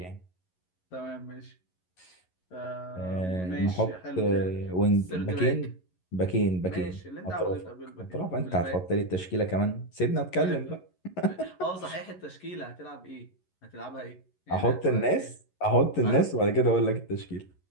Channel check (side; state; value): right; late; 11 ms